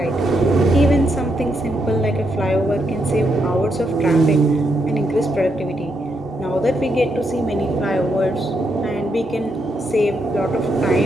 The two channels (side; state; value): both; normal; correlation 0.79